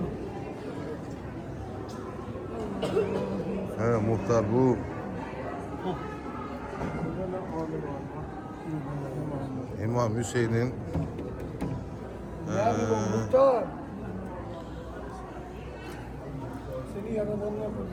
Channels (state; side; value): identical; both; correlation 1.00